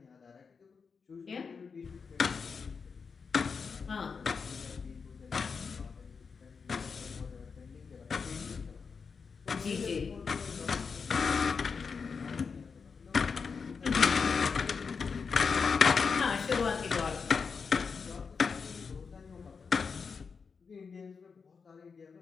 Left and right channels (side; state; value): right; quieter; 5.5 dB